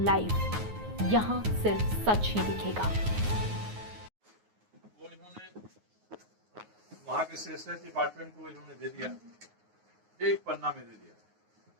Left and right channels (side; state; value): left; late; 9.5 ms